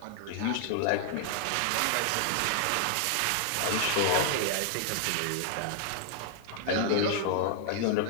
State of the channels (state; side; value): different; both; correlation 0.00